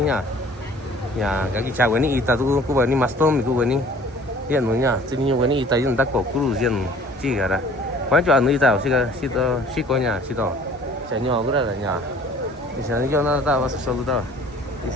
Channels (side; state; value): both; normal; correlation 0.51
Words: cái chè cái này ít ta tụi cô bảo ni master mi cô cái này hiện nữa nha chỉ nhiều cái này ít ta chúng ta có curu riêng chỉ cả đó quan trọng là tao chỉ có nhà chỉ đó chè nhỏ cái đó là nhà thì sao cho nó ta vào so luôn tao